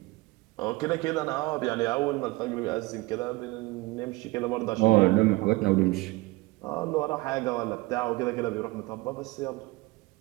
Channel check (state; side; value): quieter; left; 21.7 dB